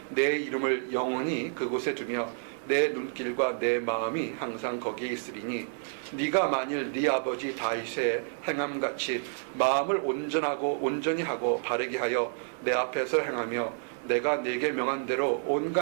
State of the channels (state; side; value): silent; left; digital silence